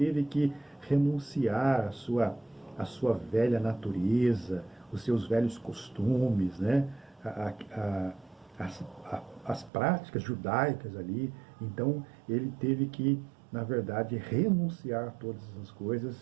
que renunciar à sua velha natureza, os seus velhos costumes, né, as práticas judaicas ali. Então, ele teve que, na verdade, renunciar a todas essas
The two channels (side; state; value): left; drops out; at 9.7 s